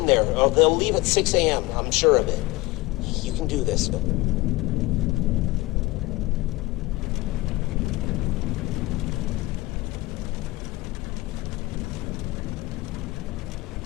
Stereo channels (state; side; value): quieter; right; 20.6 dB